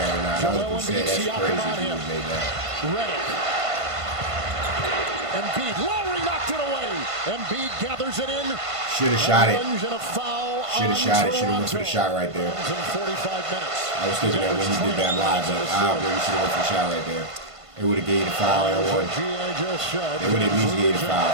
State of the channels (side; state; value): left; late; 1.5 ms